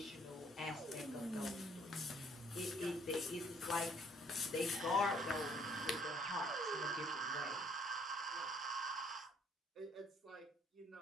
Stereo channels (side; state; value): both; normal; correlation 0.63